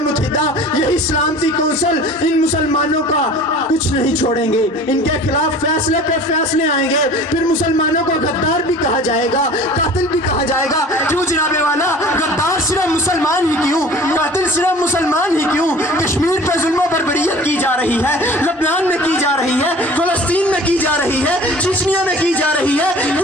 متحدہ، یہی سلامتی کونسل ان مسلمانوں کا کچھ نہیں چھوڑیں گے، ان کے خلاف فیصلے پہ فیصلے آئیں گے، پھر مسلمانوں کو غدار بھی کہا جائے گا، قاتل بھی کہا جائے گا۔ کیوں جناب والا؟ غدار صرف مسلمان ہی کیوں؟ قاتل صرف مسلمان ہی کیوں؟ کشمیر پہ ظلم و بربریت کی جا رہی ہے، لبنان میں کی جا رہی ہے، فلسطین میں کی جا رہی ہے، چچنیا میں کی جا رہی ہے،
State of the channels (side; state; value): both; normal; correlation 0.44